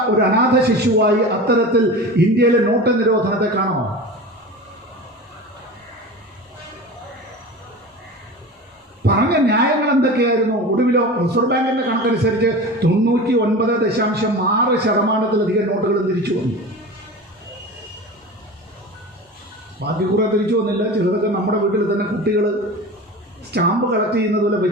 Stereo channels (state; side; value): normal; both; correlation 0.32